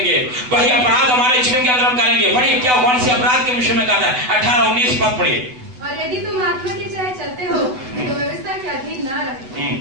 वही अपराध हमारे जीवन के अंदर हम करेंगे। पढ़िए क्या कौन से अपराध के विषय में कहता है? 18-19 पद पढ़िए। और यदि तुम आत्मा के चलाए चलते हो तो व्यवस्था के अधीन ना रहे।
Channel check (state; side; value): late; left; 7.9 ms